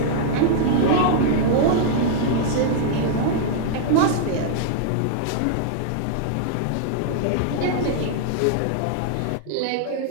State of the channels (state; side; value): different; both; correlation -0.01